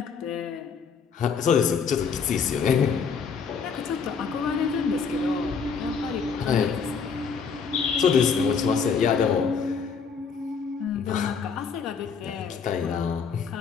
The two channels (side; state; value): right; quieter; 5.9 dB